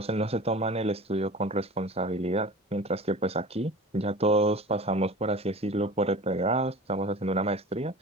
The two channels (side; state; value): both; normal; correlation 0.37